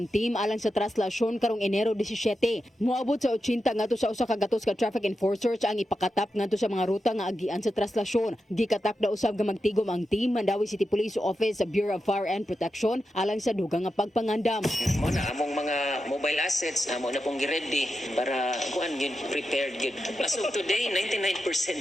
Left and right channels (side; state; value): both; normal; correlation 0.89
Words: team alang sa traslasyon karong Enero 17. Moabot sa 80 ngadto sa usa ka gatos ka traffic enforcers ang ipakatap ngadto sa mga ruta nga agian sa traslasyon. Gikatak na usab nga magtigom ang team Mandawi City Police Office sa Bureau of Fire and Protection alang sa dugang nga pagpangandam. Mo na among mga mobile assets amo na pong gi-ready para kuan gyud prepared gyud. As of today 99%